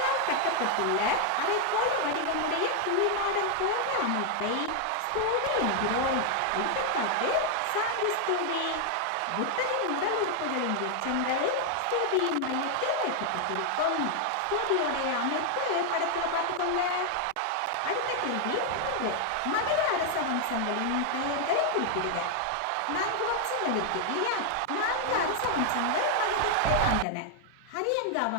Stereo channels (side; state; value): both; different; correlation 0.00